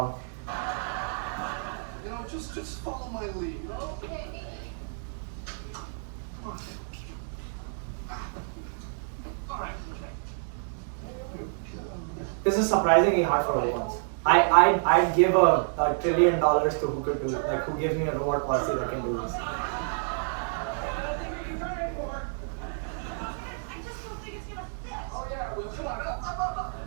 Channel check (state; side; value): silent; left; digital silence